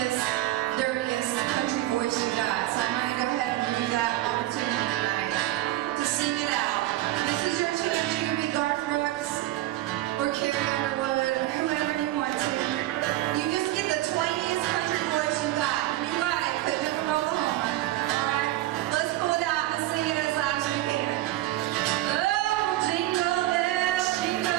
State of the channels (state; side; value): quieter; left; 15.8 dB